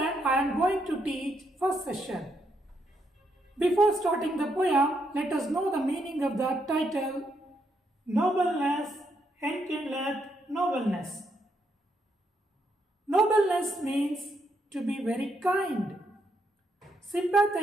I am going to teach first session. Before starting the poem, let us know the meaning of the title Nobleness Enkindleth Nobleness. Nobleness means to be very kind,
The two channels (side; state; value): both; normal; correlation 0.77